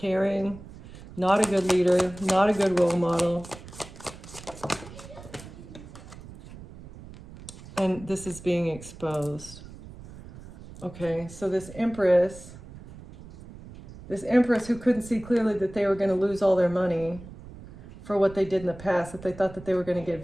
not a good leader, not a good role model. And this is being exposed. Okay, so this Empress who couldn't see clearly that they were going to lose all their money for what they did in the past, that they thought that they were going to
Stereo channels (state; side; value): noise; right; rumble, 17 dB below the sound